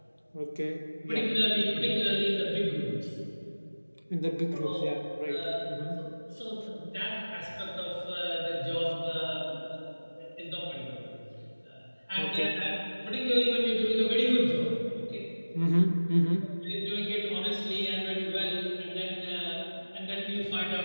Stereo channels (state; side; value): inverted; both; correlation -1.00